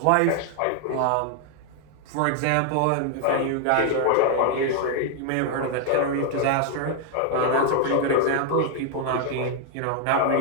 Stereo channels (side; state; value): both; different; correlation 0.00